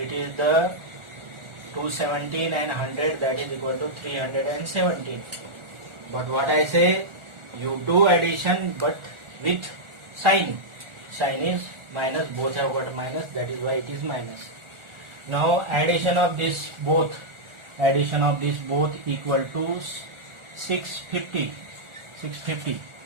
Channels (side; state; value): left; late; 1.4 ms